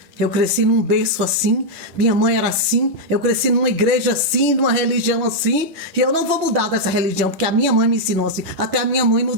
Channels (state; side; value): late; left; 10 ms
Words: Eu cresci num berço assim, minha mãe era assim, eu cresci numa igreja assim, numa religião assim, e eu não vou mudar dessa religião, porque a minha mãe me ensinou assim. Até a minha mãe